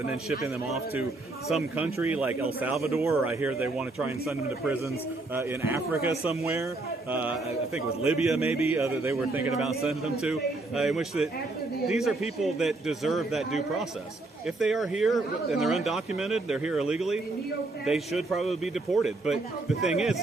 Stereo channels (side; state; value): left; quieter; 3.1 dB